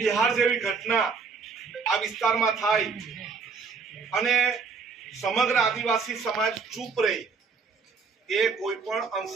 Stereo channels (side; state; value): left; quieter; 5.0 dB